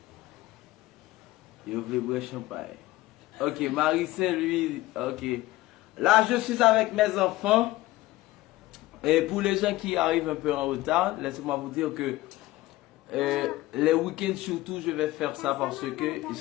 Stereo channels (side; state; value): right; quieter; 17.7 dB